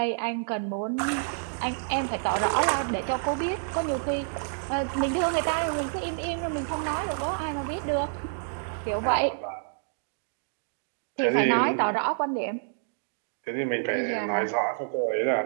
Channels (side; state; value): left; silent; digital silence